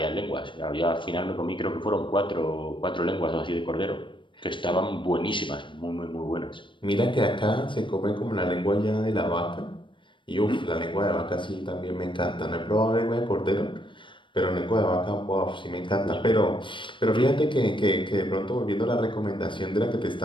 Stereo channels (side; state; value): right; late; 0.24 ms